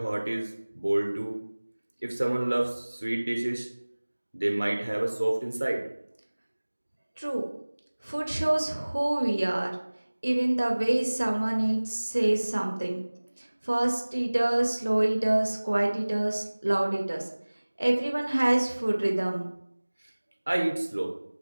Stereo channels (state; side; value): inverted; both; correlation -1.00